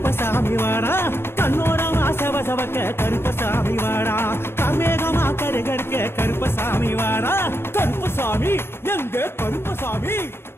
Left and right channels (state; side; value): late; right; 0.11 ms